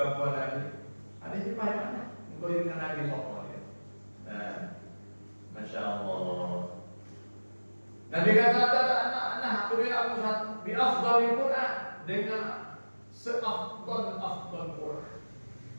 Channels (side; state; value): both; inverted; correlation -1.00